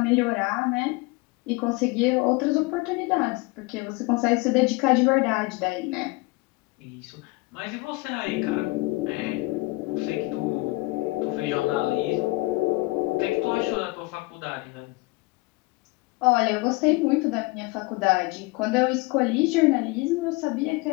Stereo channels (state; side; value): quieter; right; 23.2 dB